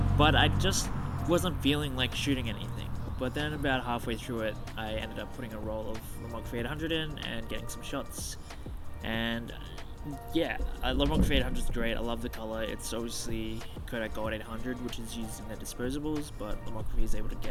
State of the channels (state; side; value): identical; both; correlation 1.00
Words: but I just wasn't feeling like shooting anything. But then about halfway through it, I ended up putting a roll of Lomography 800 in and getting some shots. And yeah, Lomography 800 is great. I love the color. It's obviously Kodak Gold 800, which is used in their disposables, but Lomography is able to